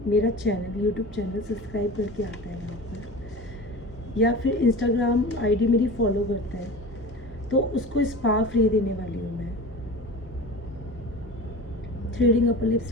मेरा चैनल, यूट्यूब चैनल सब्सक्राइब करके आता है यहाँ पर, या फिर इंस्टाग्राम आईडी मेरी फॉलो करता है, तो उसको स्पा फ्री देने वाली हूँ मैं, थ्रेडिंग अपर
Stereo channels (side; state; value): both; normal; correlation 0.34